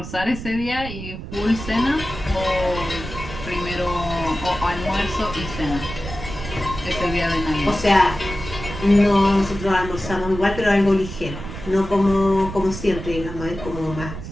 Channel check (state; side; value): noise; right; rumble, 10 dB below the sound